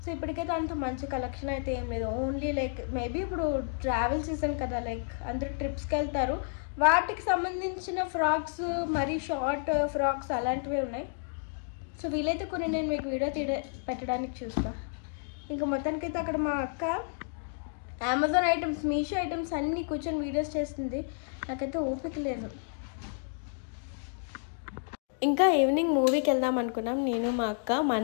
సో ఇప్పటికైతే అంత మంచి కలెక్షన్ అయితే ఏం లేదు. ఓన్లీ లైక్ మేబీ ఇప్పుడు ట్రావెల్ సీజన్ కదా, లైక్ అందరూ ట్రిప్స్కి వెళ్తారు, వాటికి సంబంధించిన ఫ్రాక్స్, మరి షార్ట్ ఫ్రాక్స్ అలాంటివే ఉన్నాయి. సో వీలైతే కొన్ని నేను మీకు వీడియో పెట్టడానికి చూస్తాను. ఇంకా మొత్తానికైతే అక్కడ మా అక్క అమెజాన్ ఐటమ్స్, మీషో ఐటమ్స్ అన్నీ కూర్చొని వీడియోస్ చేస్తుంది. నాకైతే ఓపిక లేదు. ఇంకా ఈవినింగ్ మూవీకి వెళ్దాం అనుకున్నాం నేను మా అక్క.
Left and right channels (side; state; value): right; silent; digital silence